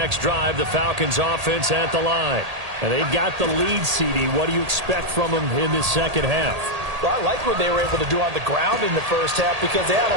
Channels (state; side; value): late; left; 1.8 ms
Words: drive, the Falcons offense at the line. And they've got the lead, CD. What do you expect from them in this second half? Well, I like what they were able to do on the ground in the first half because they had